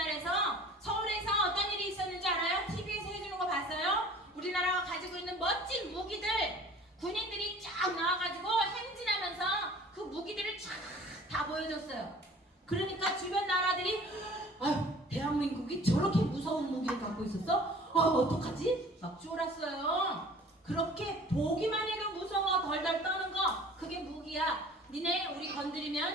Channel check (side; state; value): both; normal; correlation 0.48